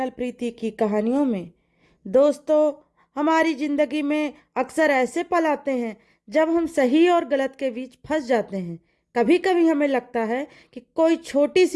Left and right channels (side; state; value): both; identical; correlation 1.00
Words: प्रीति की कहानियों में। दोस्तों, हमारी ज़िंदगी में अक्सर ऐसे पल आते हैं जब हम सही और गलत के बीच फंस जाते हैं। कभी कभी हमें लगता है कि कोई छोटी